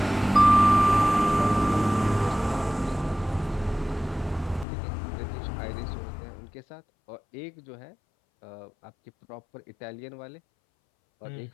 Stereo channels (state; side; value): drops out; right; at 4.7 s